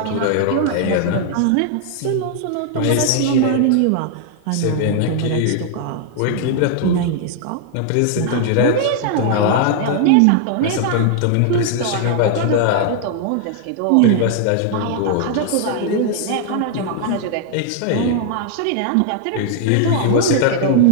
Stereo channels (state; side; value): different; both; correlation 0.00